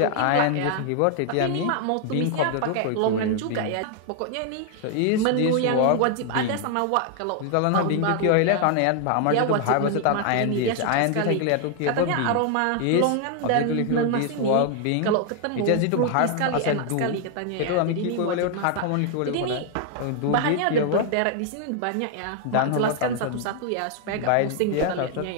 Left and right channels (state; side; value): different; both; correlation 0.00